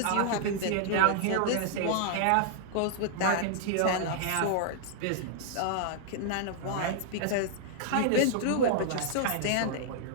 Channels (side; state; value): both; different; correlation -0.01